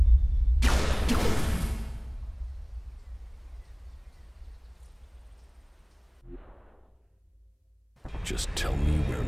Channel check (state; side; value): identical; both; correlation 1.00